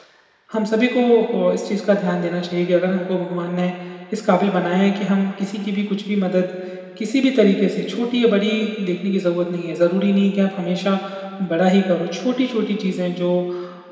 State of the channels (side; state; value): both; identical; correlation 1.00